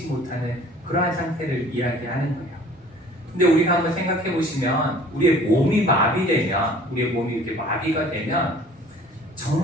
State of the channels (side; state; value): both; normal; correlation 0.50